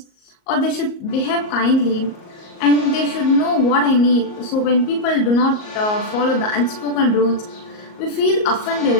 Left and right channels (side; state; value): right; late; 38 ms